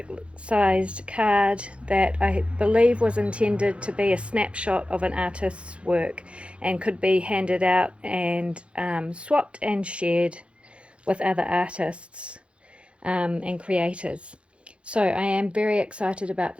sized card that I believe was intended to be a snapshot of an artist's work and could be handed out and swapped and shared with other artists and creators. So I am very excited about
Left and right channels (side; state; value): left; late; 0.059 ms